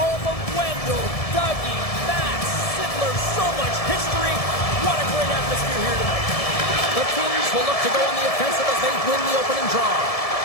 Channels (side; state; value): right; late; 1.7 ms